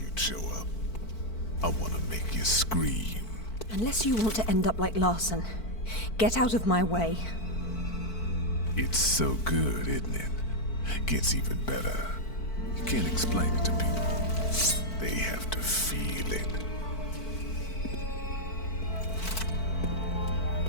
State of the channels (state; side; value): late; right; 4.5 ms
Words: show up. I want to make you scream. Unless you want to end up like Larson. Get out of my way. It's so good, isn't it? Gets even better. You can't explain it to people. They have to feel it.